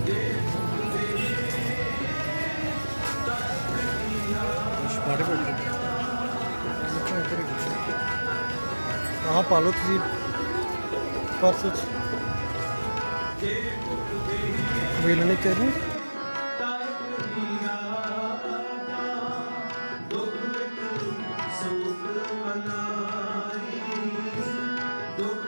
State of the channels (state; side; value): inverted; both; correlation -1.00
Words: ਆਹ ਪਾ ਲਓ ਤੁਸੀਂ ਪਰਸ 'ਚ ਵੇਲਣੇ ਚਾਹੀਦੇ